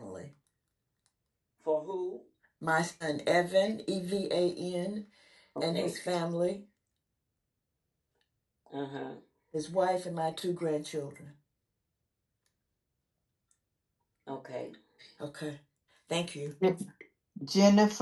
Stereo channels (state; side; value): identical; both; correlation 1.00